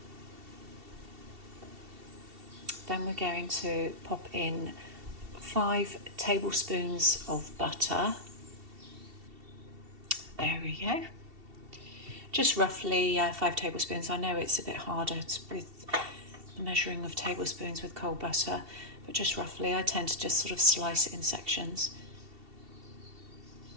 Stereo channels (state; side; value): late; left; 2.7 ms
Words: Then we're going to pop in 5 tablespoons of butter. There we go. Just roughly 5 tablespoons. I know it's a bit harder with the measuring of tablespoons with cold butter, but just roughly. I tend to just sort of slice it in sections.